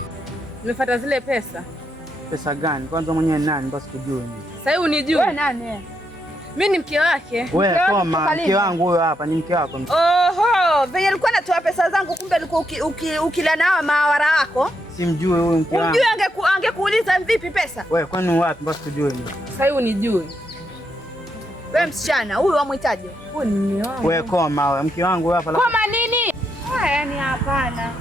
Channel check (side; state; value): both; normal; correlation 0.80